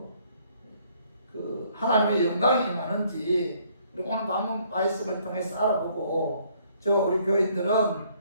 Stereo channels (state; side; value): inverted; both; correlation -0.64